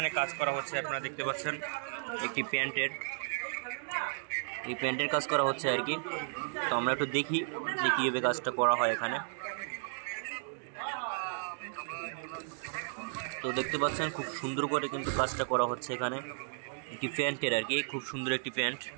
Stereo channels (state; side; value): silent; left; digital silence